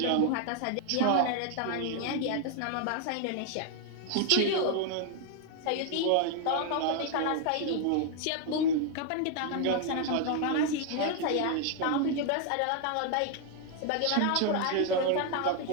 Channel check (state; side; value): different; both; correlation 0.00